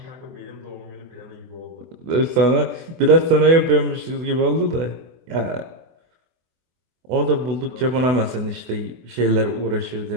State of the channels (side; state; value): left; late; 24 ms